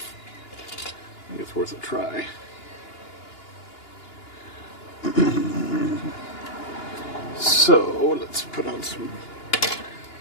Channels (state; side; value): late; right; 2.9 ms